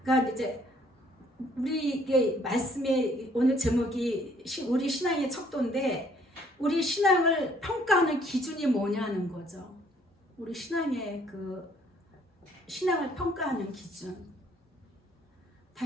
그러니까 이제 우리의 말씀의 오늘 제목이 우리 신앙의 척도인데 우리 신앙을 평가하는 기준이 뭐냐는 거죠. 우리 신앙의 그 신앙을 평가하는 기준.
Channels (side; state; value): both; normal; correlation 0.63